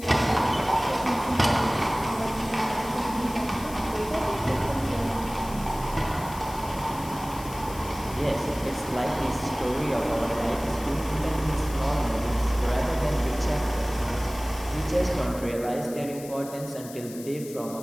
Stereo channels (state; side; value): noise; left; hiss, 16 dB below the sound